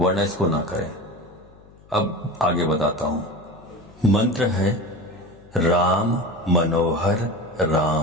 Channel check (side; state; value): left; noise; hum, 25 dB below the sound